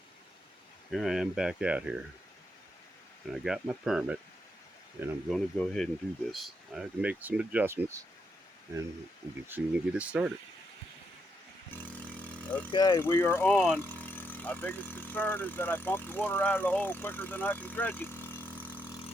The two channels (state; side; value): normal; both; correlation 0.80